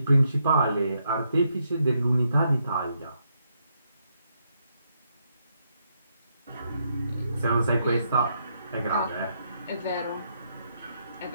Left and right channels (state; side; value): inverted; both; correlation -0.77